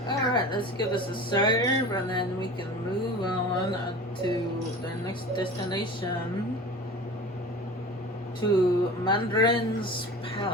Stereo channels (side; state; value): both; normal; correlation 0.36